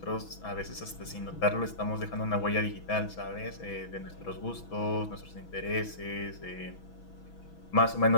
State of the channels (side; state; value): right; late; 6.1 ms